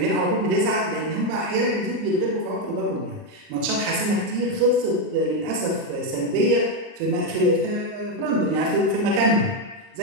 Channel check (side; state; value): left; late; 39 ms